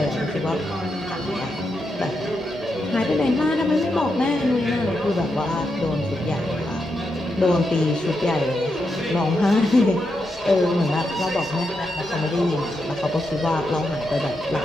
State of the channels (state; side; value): normal; both; correlation 0.84